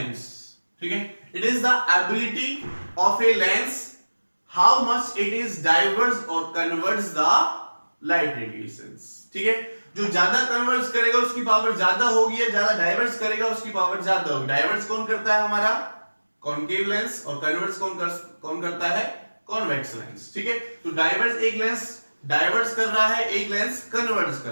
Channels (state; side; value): inverted; both; correlation -1.00